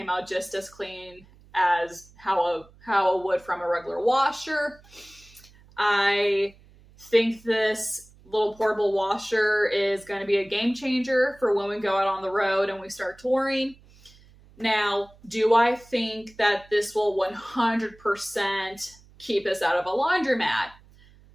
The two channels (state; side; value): noise; right; hum, 26 dB below the sound